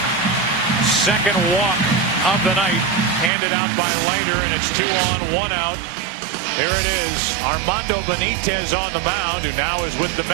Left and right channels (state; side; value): drops out; left; at 3.3 s